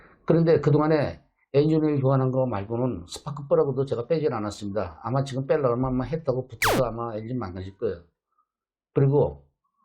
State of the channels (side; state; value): both; identical; correlation 1.00